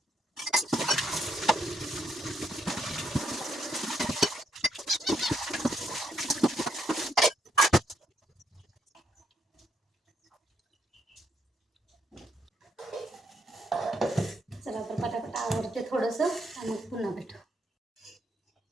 चला तर पटापट आवडते थोडंसं आणि मग पुन्हा भेटू.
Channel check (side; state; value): both; normal; correlation 0.75